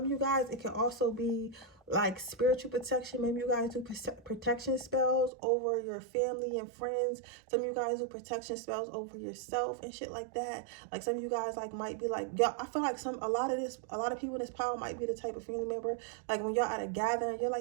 of you guys, it can also be like spiritual protection. Maybe you guys do protection spells over your family and friends. Some of you guys do protection spells over yourself and shit like that. Like some of you guys like might be like, yo, I feel like a lot of people in this power might be the type of family member, like when y'all at a gathering, you're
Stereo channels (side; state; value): left; drops out; at 5.3 s